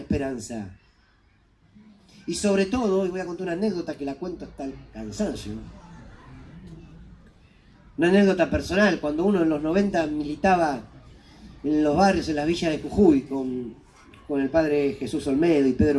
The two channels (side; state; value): both; identical; correlation 1.00